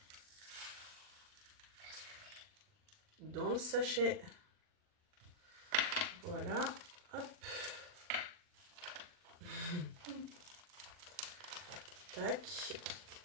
Dans le sachet. Voilà. Hop. Tac.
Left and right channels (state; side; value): late; left; 40 ms